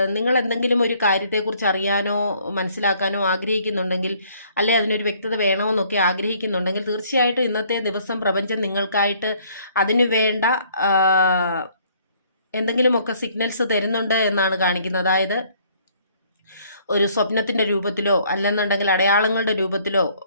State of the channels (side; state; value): both; inverted; correlation -0.62